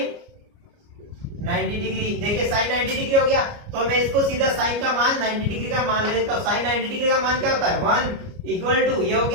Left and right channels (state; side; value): late; left; 29 ms